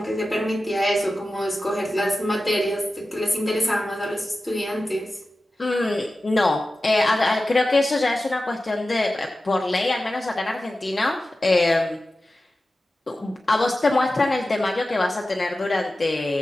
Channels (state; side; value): normal; both; correlation 0.94